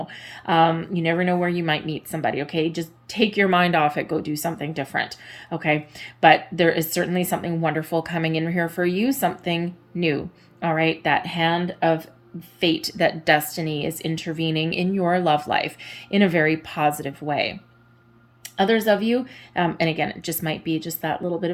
You never know where you might meet somebody. Okay, just take your mind off it. Go do something different. Okay, but there is certainly something wonderful coming in here for you, something new. All right, that hand of fate, that destiny is intervening in your love life in a very positive way. Others of you, and again, it just might be just that little bit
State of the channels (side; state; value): both; identical; correlation 1.00